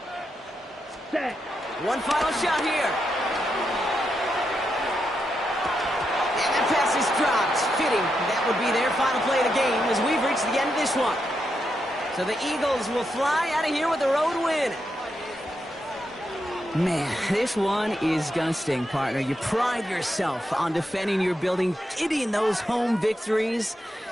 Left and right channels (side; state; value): both; normal; correlation 0.84